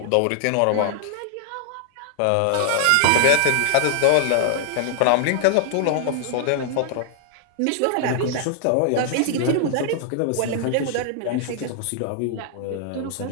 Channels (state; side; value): different; both; correlation -0.01